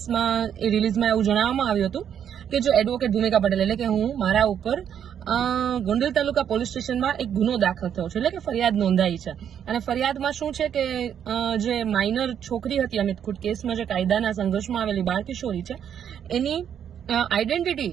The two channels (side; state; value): left; quieter; 8.9 dB